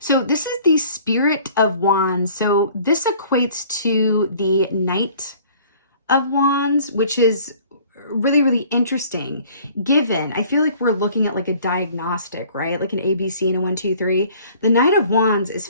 this is the Spirit of Wands. So this equates to the Knight of Wands, which is really, really interesting. Given, I feel like we're looking at a diagnostic, right? Like an ABC and a 1, 2, 3. The Knight of Wands is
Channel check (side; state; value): both; inverted; correlation -0.53